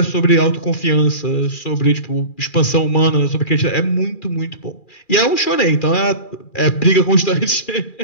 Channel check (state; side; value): late; right; 2.4 ms